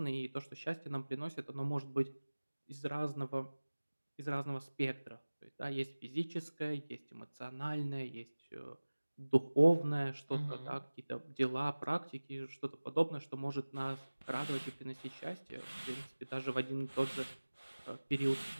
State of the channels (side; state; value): both; inverted; correlation -1.00